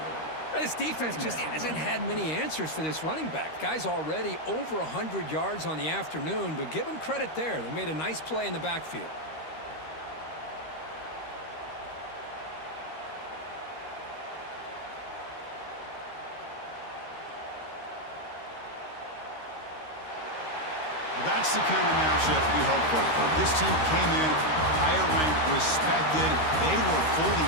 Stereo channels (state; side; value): late; right; 13 ms